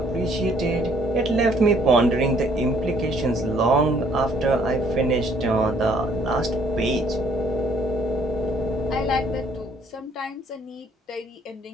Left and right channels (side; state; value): both; normal; correlation 0.63